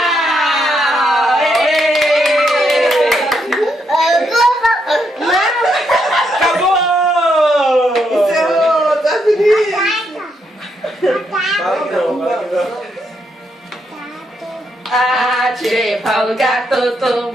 Acabou! Encerrou, tá feliz? Tirei o pau no gato,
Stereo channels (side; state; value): both; normal; correlation 0.78